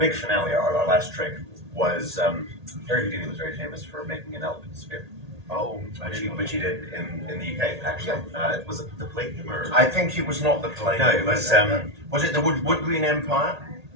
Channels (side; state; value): left; late; 1.8 ms